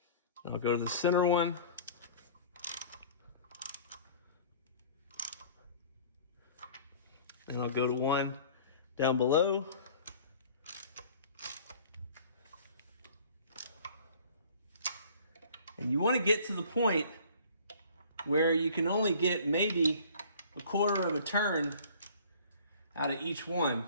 I'll go to the center one. Then I'll go to one down below. And you want to get to the point where you can only get maybe a quarter of a turn out of each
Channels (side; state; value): both; inverted; correlation -0.49